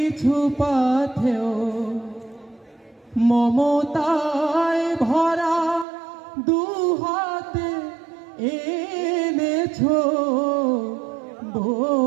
পাথেও মমতায় ভরা দুহাতে এনেছ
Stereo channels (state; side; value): drops out; left; at 5.9 s